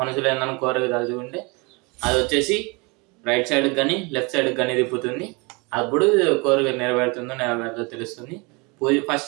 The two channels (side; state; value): left; quieter; 28.7 dB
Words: ఏదైనా కోరిక తలుచుకుంటే అది వచ్చేసి రైట్ సైడ్ కానీ లెఫ్ట్ సైడ్ కానీ తిప్పుతుంది. అప్పుడు కోరిక నెరవేరుతుందో తెలుస్తుంది.